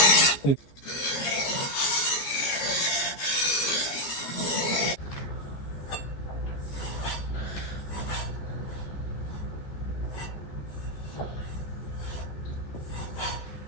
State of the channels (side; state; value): right; late; 14 ms